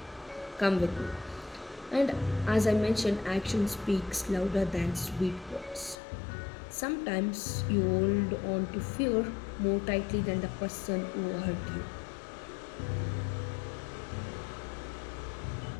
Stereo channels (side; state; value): right; drops out; at 6.0 s